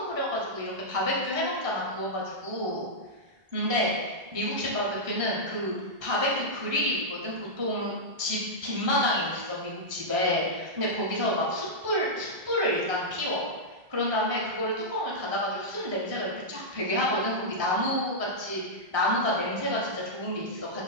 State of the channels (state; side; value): late; left; 1.3 ms